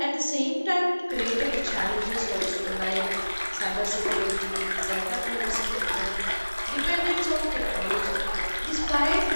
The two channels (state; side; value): inverted; both; correlation -1.00